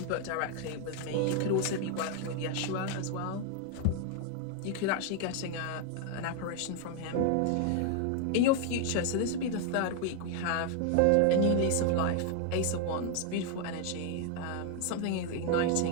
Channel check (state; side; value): different; both; correlation 0.00